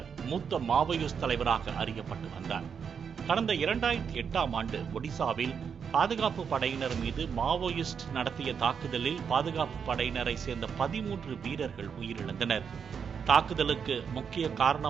மூத்த மாவோயிஸ்ட் தலைவராக அறியப்பட்டு வந்தார். கடந்த 2008ஆம் ஆண்டு ஒடிசாவில் பாதுகாப்பு படையினர் மீது மாவோயிஸ்ட் நடத்திய தாக்குதலில் பாதுகாப்பு படையினரை சேர்ந்த 13 வீரர்கள் உயிரிழந்தனர். தாக்குதலுக்கு முக்கிய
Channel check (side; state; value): left; quieter; 6.8 dB